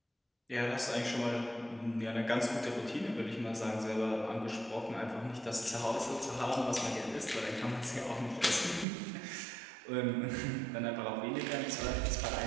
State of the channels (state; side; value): drops out; left; at 8.8 s